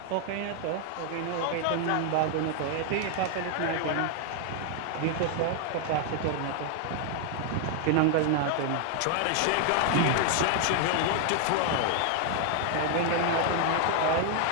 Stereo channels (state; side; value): different; both; correlation 0.00